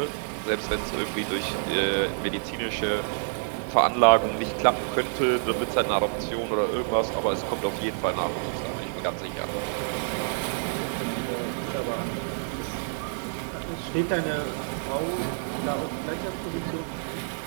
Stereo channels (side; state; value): left; silent; digital silence